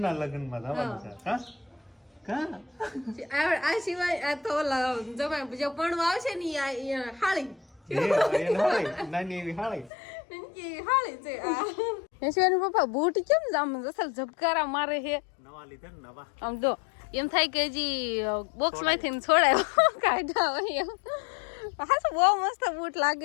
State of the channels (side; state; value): right; drops out; at 9.9 s